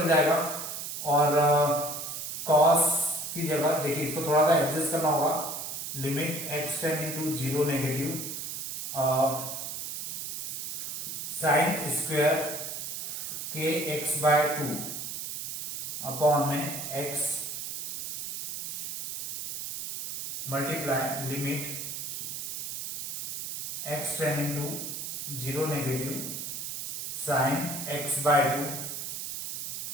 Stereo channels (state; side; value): noise; right; hiss, 5 dB below the sound